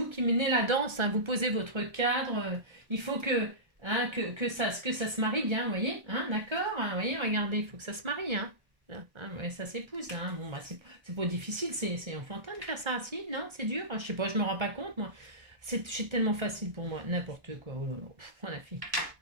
menez la danse. Hein. Vous posez votre cadre. Il faut que ça se marie bien, vous voyez, hein, d'accord, hein, vous voyez, regardez, il faut que ça se marie. Hein. Voilà, hein, ouais, ça s'épouse, hein. Bon, bah, c'est pas difficile, c'est enfantin de faire ça, si, non, c'est dur, hein, je sais pas, je me rends pas compte, moi. C'est tellement facile pour moi, n'importe quoi, oh là là, oh la fille.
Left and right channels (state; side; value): late; left; 1.3 ms